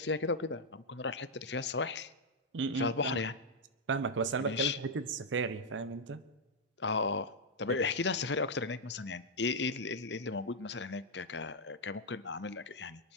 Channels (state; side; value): normal; both; correlation -0.03